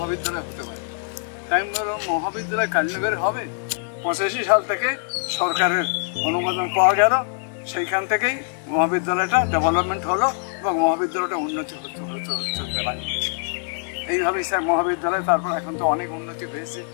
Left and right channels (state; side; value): silent; right; 61 dB below the other